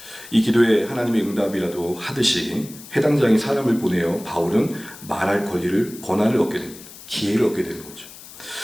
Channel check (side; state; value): left; noise; hiss, 17 dB below the sound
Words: 이 기도에 하나님의 응답이라도 하듯이 해당장이 사람을 보내어 바울은 말할 권한을 얻게 됩니다. 기회를 얻게 되는 거죠.